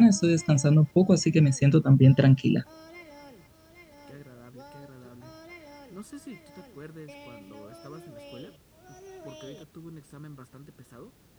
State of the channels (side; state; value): both; identical; correlation 1.00